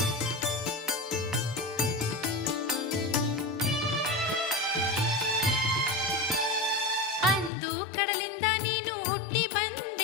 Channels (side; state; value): right; drops out; at 7.5 s